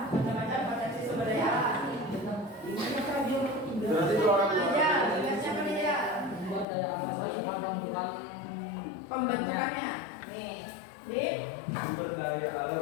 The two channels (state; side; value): drops out; right; at 6.7 s